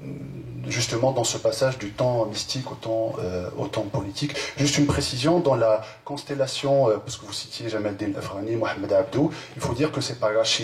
justement dans ce passage du temps mystique au temps politique. Juste une précision, dans la constellation, parce que vous citiez Jamal Din Afghani, Mohamed Abdou, il faut dire que c'est par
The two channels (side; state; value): both; identical; correlation 1.00